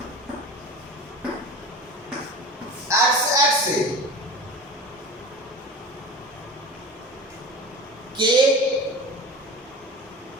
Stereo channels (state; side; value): normal; both; correlation 0.34